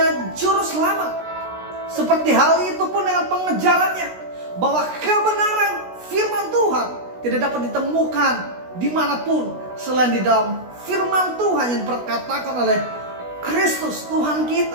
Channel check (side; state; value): left; late; 16 ms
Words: juru selamat. Seperti hal itu pun dengan pengejarannya, bahwa kebenaran firman Tuhan tidak dapat ditemukan dimanapun selain di dalam firman Tuhan yang diperkatakan oleh Kristus Tuhan